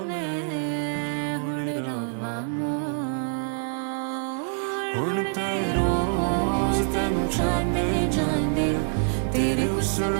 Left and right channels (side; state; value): left; silent; 59 dB below the other